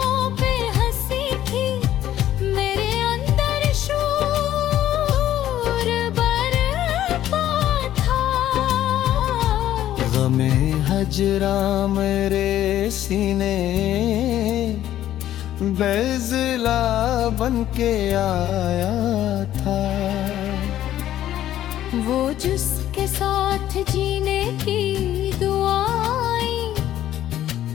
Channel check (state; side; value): quieter; right; 12.4 dB